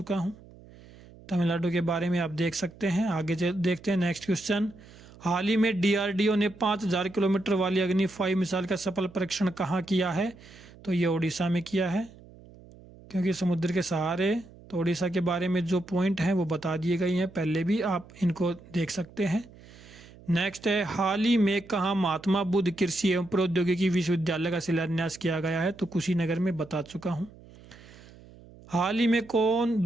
हूँ। तमिलनाडु के बारे में आप देख सकते हैं। आगे देखते हैं नेक्स्ट क्वेश्चन। हाल ही में डीआरडीओ ने 5000 किलोमीटर वाली अग्नि 5 मिसाइल का सफल परीक्षण कहाँ किया है? तो ये उड़ीसा में किया है, क्योंकि समुद्र के सहारे। तो उड़ीसा के बारे में जो पॉइंट हैं वो बता दिए गए हैं, पहले भी आप इनको देख सकते हैं। नेक्स्ट है, हाल ही में कहाँ महात्मा बुद्ध कृषि एवं प्रौद्योगिकी विश्वविद्यालय का शिलान्यास किया गया है? तो कुशीनगर में बता चुका हूँ। हाल ही में कौन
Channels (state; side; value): noise; right; hum, 22 dB below the sound